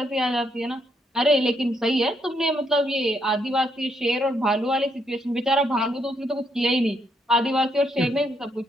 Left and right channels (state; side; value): normal; both; correlation 0.75